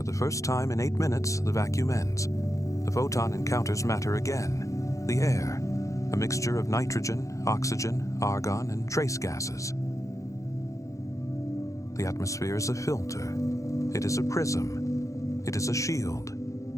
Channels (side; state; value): right; late; 0.15 ms